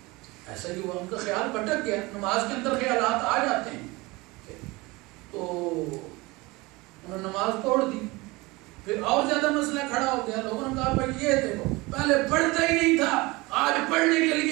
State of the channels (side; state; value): left; quieter; 23.1 dB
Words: ایسا ہی ہوا ان کا خیال بھٹک گیا. نماز کے اندر خیالات آ جاتے ہیں. تو انہوں نے نماز توڑ دی. پھر اور زیادہ مسئلہ کھڑا ہو گیا. لوگوں نے کہا بھائی یہ دیکھو پہلے پڑھتا ہی نہیں تھا، آج پڑھنے کے